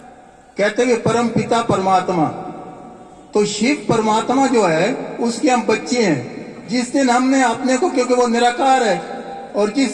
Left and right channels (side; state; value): both; identical; correlation 1.00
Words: कहते हैं परम पिता परमात्मा, तो शिव परमात्मा जो है उसके हम बच्चे हैं। जिस दिन हमने अपने को, क्योंकि वो निराकार है, और